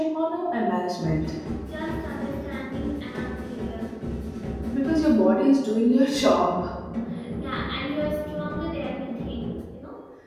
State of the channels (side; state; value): both; identical; correlation 1.00